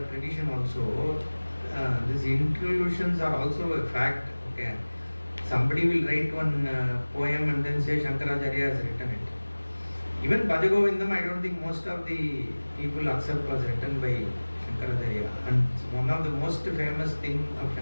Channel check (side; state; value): both; inverted; correlation -1.00